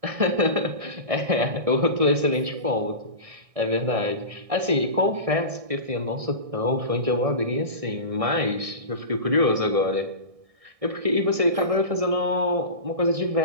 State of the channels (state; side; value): late; left; 1.6 ms